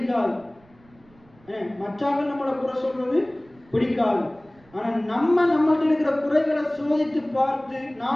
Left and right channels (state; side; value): noise; right; rumble, 29 dB below the sound